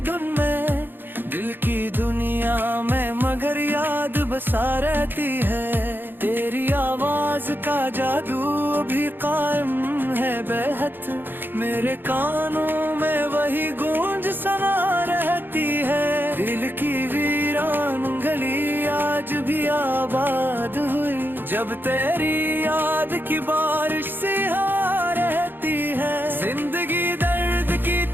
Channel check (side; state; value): left; late; 0.097 ms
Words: धुन में, दिल की दुनिया में मगर याद बसा रहती है। तेरी आवाज का जादू अभी कायम है बेहद, मेरे कानों में वही गूंज सना रहती है। दिल की वीरान गली आज भी आबाद हुई, जब तेरी याद की बारिश सी आ रहती है। जिंदगी दर्द की